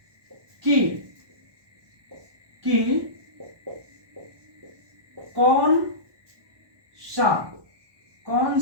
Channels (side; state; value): left; late; 1.2 ms